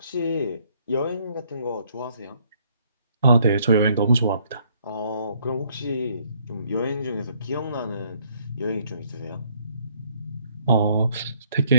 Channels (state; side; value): inverted; both; correlation -0.66